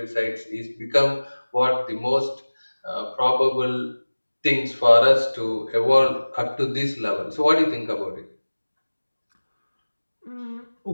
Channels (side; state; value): both; inverted; correlation -1.00